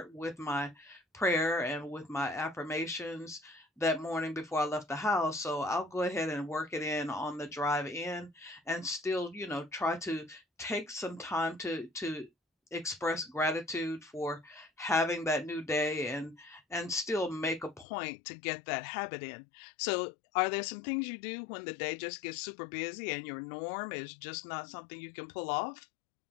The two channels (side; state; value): right; drops out; at 17.9 s